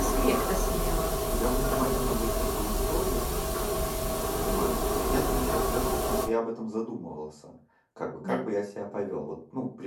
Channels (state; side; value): identical; both; correlation 1.00